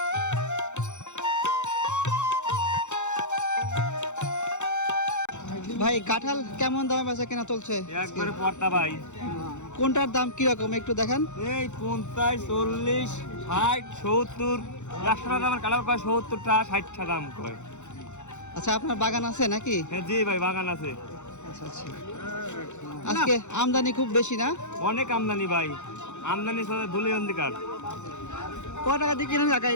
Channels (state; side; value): late; right; 0.84 ms